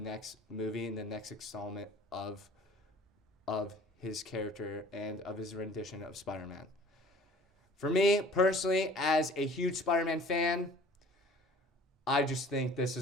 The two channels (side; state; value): both; normal; correlation 0.48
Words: movie and the next installment of his character and of his rendition of Spider-Man. For me, personally, as a huge Spider-Man fan, I just think this